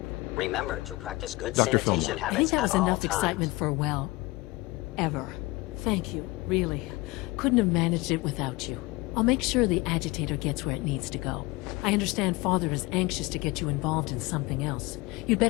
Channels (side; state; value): right; quieter; 22.2 dB